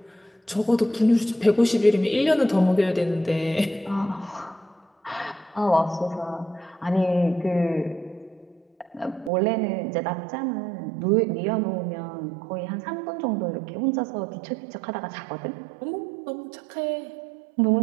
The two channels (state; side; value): drops out; left; at 9.3 s